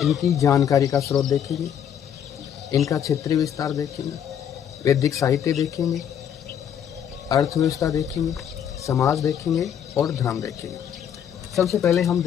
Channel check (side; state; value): right; quieter; 9.0 dB